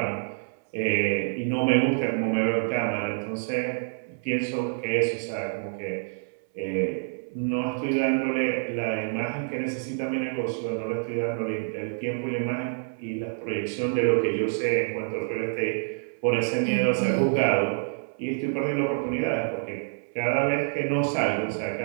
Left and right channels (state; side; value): silent; left; 60 dB below the other